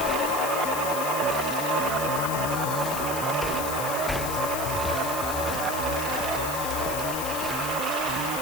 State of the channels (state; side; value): noise; left; hiss, 6 dB below the sound